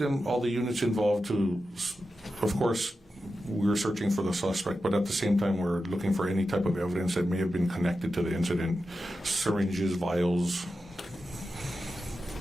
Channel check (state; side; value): normal; both; correlation 0.91